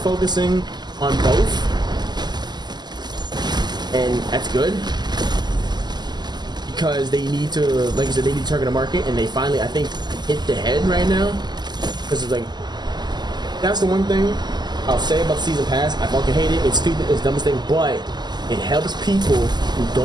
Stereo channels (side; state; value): left; late; 0.21 ms